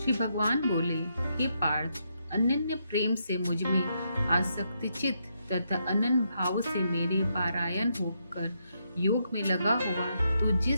भगवान बोले, हे पार्थ, अनन्य प्रेम से मुझ में आसक्ति चित्त तथा अनन्य भाव से मेरे पारायण होकर योग में लगा हुआ तू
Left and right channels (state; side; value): inverted; both; correlation -0.79